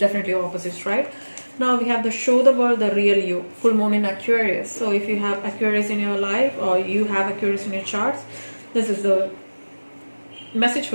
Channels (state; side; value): inverted; both; correlation -1.00